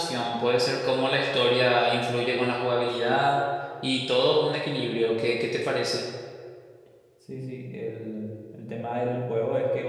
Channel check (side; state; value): both; identical; correlation 1.00